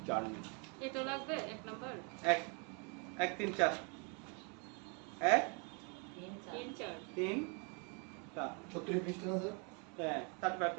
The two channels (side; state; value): left; quieter; 35.8 dB